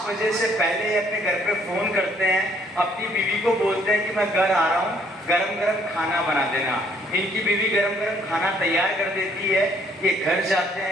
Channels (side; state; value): both; normal; correlation 0.65